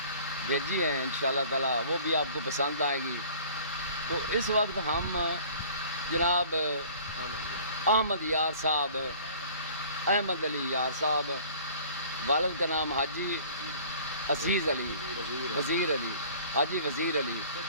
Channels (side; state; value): both; inverted; correlation -0.49